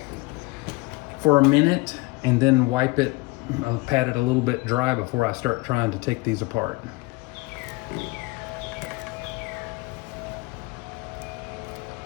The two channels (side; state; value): right; quieter; 24.7 dB